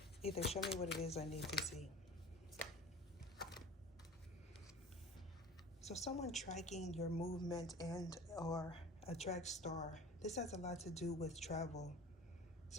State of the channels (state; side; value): normal; both; correlation 0.39